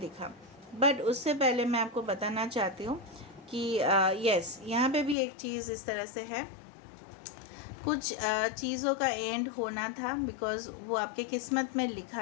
बट उससे पहले मैं आपको बताना चाहती हूँ कि यस, यहाँ पे भी एक चीज़ इस तरह से है, कुछ चीज़ों का एंड होना था, बिकॉज़ वो आपके किस्मत में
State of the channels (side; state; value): right; drops out; at 5.2 s